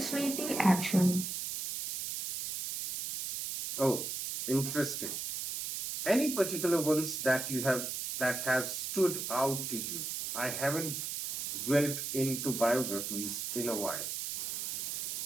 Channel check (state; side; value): noise; right; hiss, 4 dB below the sound